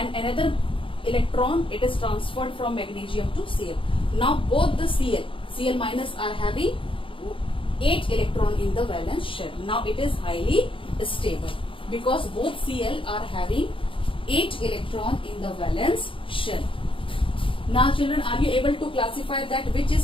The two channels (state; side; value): late; right; 0.25 ms